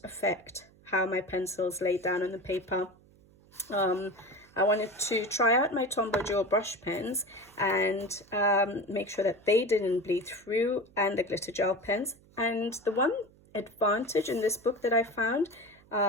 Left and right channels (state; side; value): noise; right; hum, 28 dB below the sound